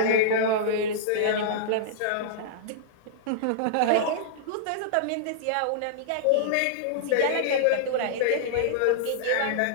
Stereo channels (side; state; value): both; different; correlation -0.02